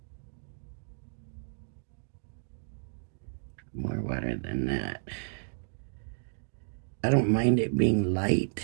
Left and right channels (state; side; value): silent; left; digital silence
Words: More water than that. I don't mind it being light.